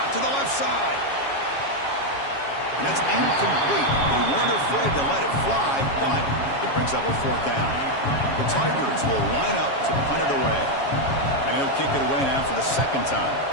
to the left side. And that's incomplete. They weren't afraid to let it fly, but it brings up a 4th down. The Tigers will line up to punt it away. And he'll kick it away now for the 2nd time.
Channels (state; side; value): late; right; 7.2 ms